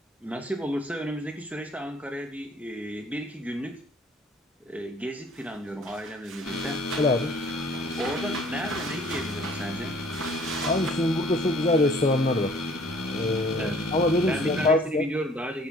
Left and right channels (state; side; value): normal; both; correlation 0.55